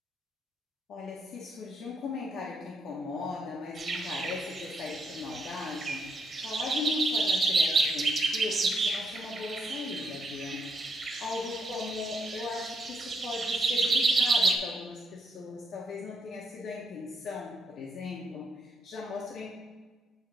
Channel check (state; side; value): normal; both; correlation 0.77